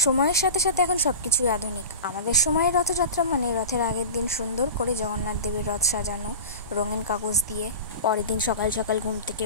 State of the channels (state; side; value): inverted; both; correlation -0.33